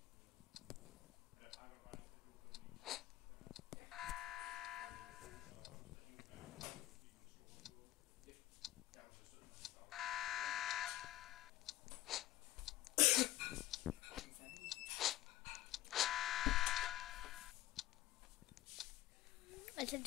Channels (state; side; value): quieter; right; 15.3 dB